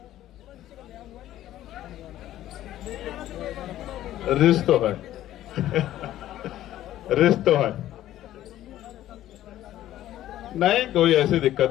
रिश्त तो है रिश्त तो है, नहीं कोई ऐसी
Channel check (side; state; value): right; quieter; 13.4 dB